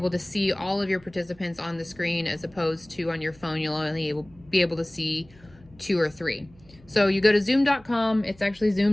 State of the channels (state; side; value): noise; right; hum, 26 dB below the sound